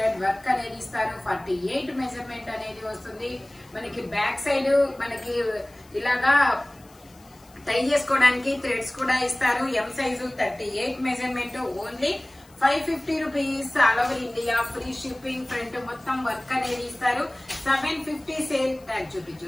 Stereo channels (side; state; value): left; noise; hiss, 27 dB below the sound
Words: వర్క్ అనేది ఇస్తారు. 48 మెజర్మెంట్ అనేది వస్తుంది. మనకి బ్యాక్ సైడ్ మనకి ఇలాగా టై చేసుకోవడానికి థ్రెడ్స్ కూడా ఇస్తారు. ఎం size 38 measurement, only 550 rupees. All over India free shipping. Front మొత్తం వర్క్ అనేది ఇస్తారు. 750 సేల్ ట్యాగ్ చూపించు.